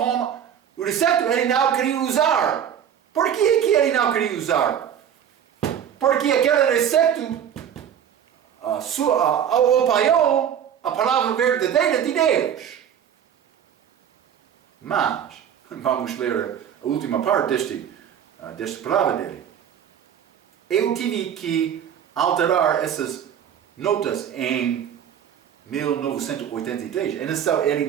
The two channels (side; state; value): left; quieter; 9.1 dB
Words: o recepto, ele não queria usar. Por que ele não queria usar? Porque aquele recepto apoiou a palavra verdadeira de Deus. Mas, vamos ler a última parte desta palavra dele. Eu tive que alterar essas notas em 1983. É necessário ele